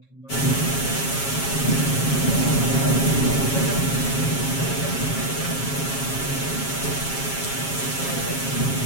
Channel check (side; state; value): right; late; 7.3 ms